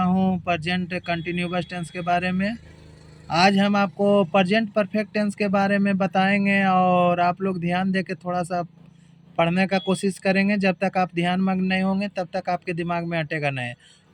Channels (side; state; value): both; identical; correlation 1.00